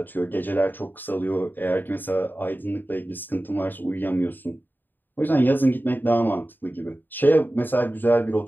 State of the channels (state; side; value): late; right; 0.091 ms